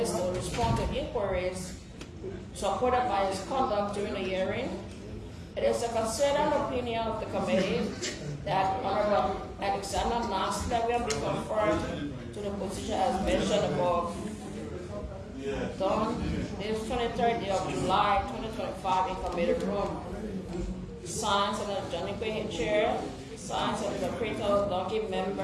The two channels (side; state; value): both; identical; correlation 1.00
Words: to respond to inquiries supported by his conduct during the hearing, it is the considered opinion of the committee that Honorable Alexander Nasler will be confirmed to the position as mentioned above. Done this 23rd day of July 2025 in committee room. Signed Senator Johnny Quinn, Chair. Signed Senator Creto Donkey,